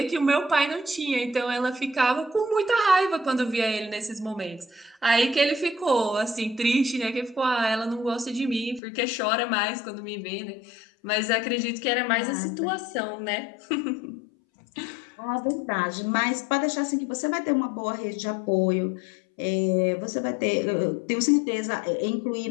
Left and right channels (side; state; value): right; drops out; at 8.8 s